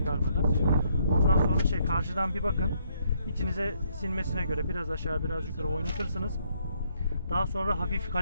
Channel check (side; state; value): both; inverted; correlation -0.71